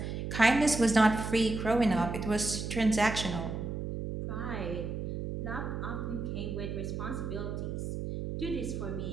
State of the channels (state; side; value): noise; right; hum, 4 dB below the sound